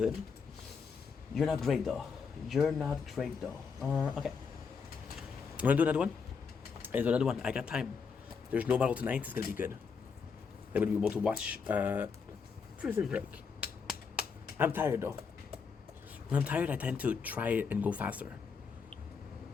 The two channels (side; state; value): right; quieter; 5.7 dB